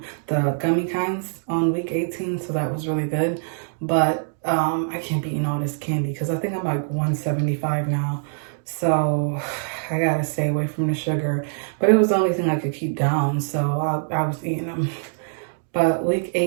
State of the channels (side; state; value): left; silent; digital silence